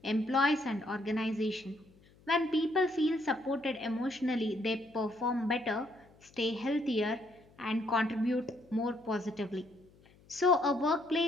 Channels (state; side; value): noise; left; hum, 28 dB below the sound